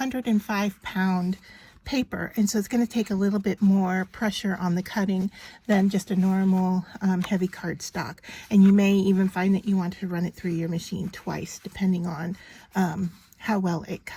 paper, and so it's going to take a little bit more pressure on the cutting than just a normal heavy cardstock, and you may even find that you want to run it through your machine twice depending on how well it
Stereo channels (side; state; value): both; identical; correlation 1.00